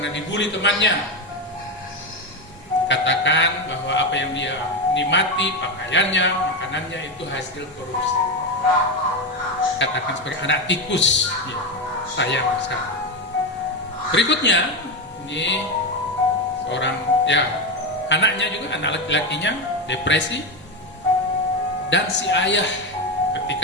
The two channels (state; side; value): normal; both; correlation 0.14